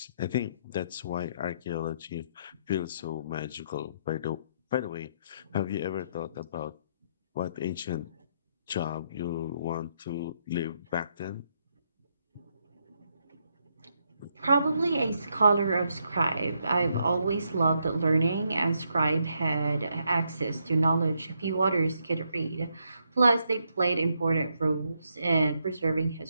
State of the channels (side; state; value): both; inverted; correlation -0.77